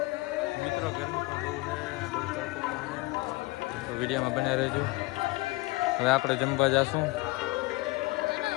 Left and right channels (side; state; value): right; quieter; 22.9 dB